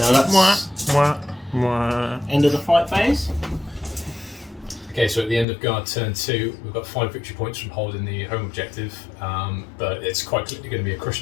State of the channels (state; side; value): drops out; right; at 5.5 s